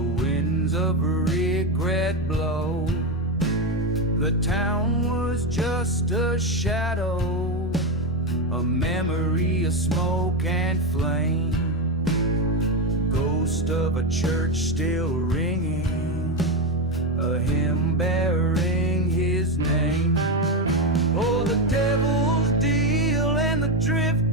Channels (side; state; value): both; normal; correlation 0.11